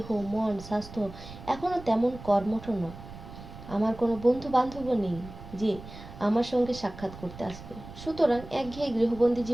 মন, স্বাস্থ্য এখনো তেমন কর্মঠ নয়। আমার কোনো বন্ধু বান্ধবও নেই যে আমার সঙ্গে সাক্ষাৎ করতে আসবে। সুতরাং একঘেয়ে গৃহবন্দী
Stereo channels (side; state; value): right; noise; rumble, 15 dB below the sound